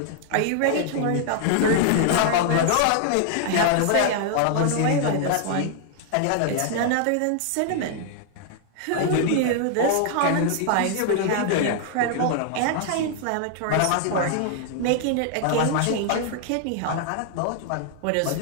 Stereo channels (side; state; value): both; different; correlation 0.00